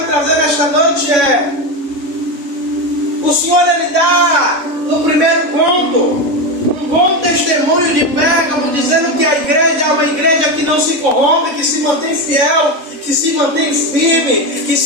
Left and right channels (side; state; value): left; late; 3.6 ms